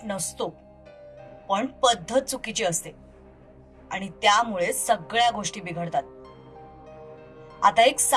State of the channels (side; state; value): both; identical; correlation 1.00